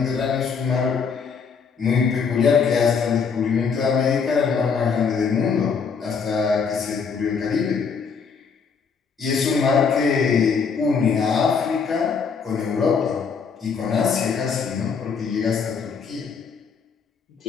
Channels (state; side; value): quieter; right; 5.9 dB